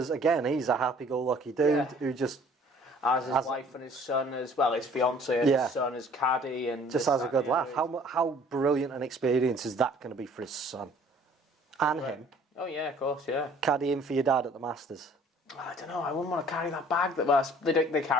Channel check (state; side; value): normal; both; correlation 0.54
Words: again, he's a happy-go-lucky dude who just as his wife and his son as well, his fiance and his son, his caddy, and just has a good laugh. How brilliant an experience is that going to be for his son and him? Oh yeah, of course, yeah. Caddying for your dad at the Masters. I don't know. I wouldn't want to carry that bag. They